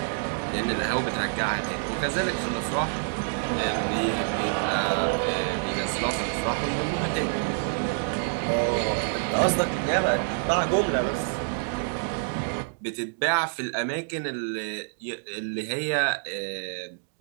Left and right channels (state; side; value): silent; left; digital silence